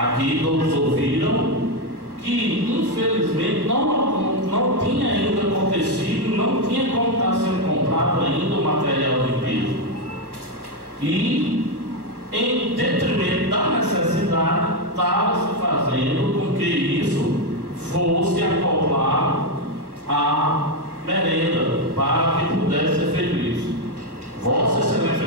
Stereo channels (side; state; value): left; late; 1.2 ms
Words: todos ouviram, que infelizmente não tinha ainda acontecido, não tinha como estar sendo comprado ainda o material de piso. E em detrimento da necessidade, estava se fazendo com que isso fosse acoplar a merenda para que pudesse ser feito isso. Vossa Excelência